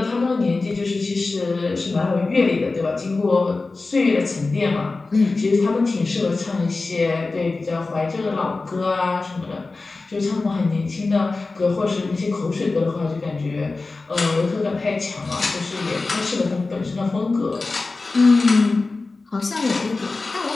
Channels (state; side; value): quieter; right; 3.6 dB